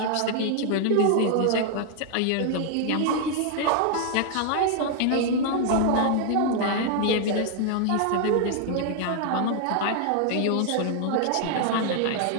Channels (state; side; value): different; both; correlation 0.00